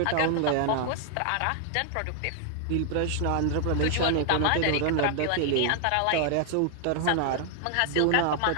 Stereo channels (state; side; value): different; both; correlation 0.00